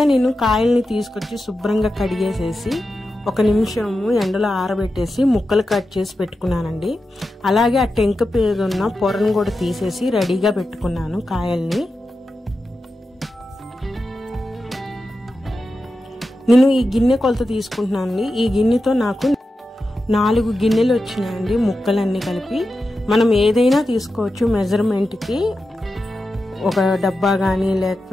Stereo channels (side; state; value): both; normal; correlation 0.91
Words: నేను కాయల్ని తీసుకొచ్చి శుభ్రంగా కడిగేసేసి 1 నిమిషము ఎండలో ఆరబెట్టేసి ముక్కలు కట్ చేసి పెట్టుకున్నానండి. అలాగే ఆ టెంక మీద ఉన్న పొరను కూడా తీసేసి రెడీగా పెట్టుకున్నాను కాయల్ని. నేను ఈ గిన్నె కొలత తీసుకుంటున్నానండి. ఈ గిన్నెతో నాకు 4 గిన్నెలు వచ్చినాయండి ముక్కలన్నీ కలిపి. మనం ఏదైనా తీసుకోవచ్చు మెజర్మెంట్కి, ఒక డబ్బా కానీ